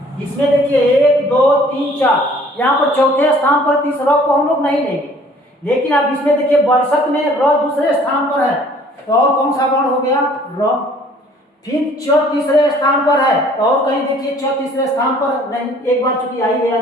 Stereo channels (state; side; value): normal; both; correlation 0.55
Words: इसमें देखिए 1 2 3 4, यहाँ पर चौथे स्थान पर, तीस र को हम लोग नहीं लेंगे। लेकिन अब इसमें देखिए बरसत में र दूसरे स्थान पर है, तो और कौन सा वर्ण हो गया, र। फिर च तीसरे स्थान पर है, तो और कहीं देखिए च तीसरे स्थान पर नहीं, एक बार चूंकि आ ही गया